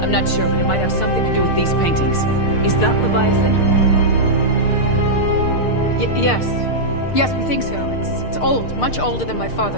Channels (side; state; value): right; late; 6.6 ms